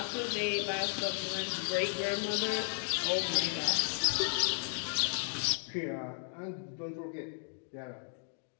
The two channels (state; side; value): silent; right; digital silence